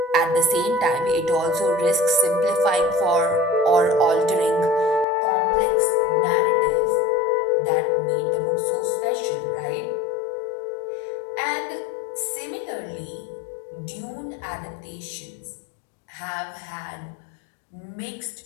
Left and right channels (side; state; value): right; drops out; at 5.1 s